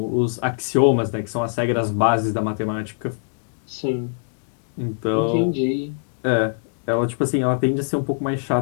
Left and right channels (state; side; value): silent; right; digital silence